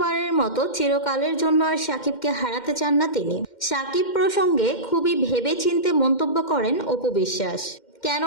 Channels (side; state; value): right; late; 2.1 ms